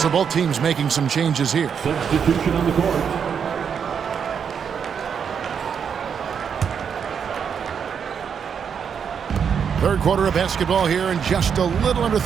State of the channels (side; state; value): left; quieter; 7.2 dB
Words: So both teams making some changes here. Substitution on the court. Third quarter of basketball here, and just a little under